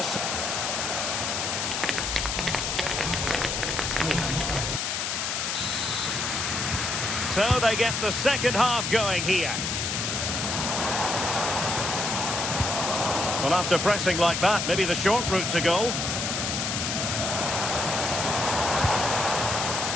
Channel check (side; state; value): left; noise; hiss, 1 dB below the sound